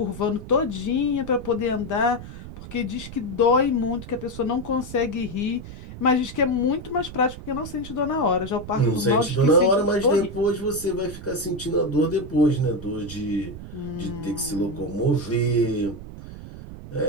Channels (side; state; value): right; noise; rumble, 12 dB below the sound